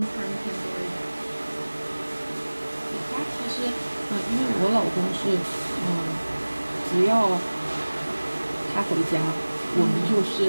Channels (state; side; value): inverted; both; correlation -1.00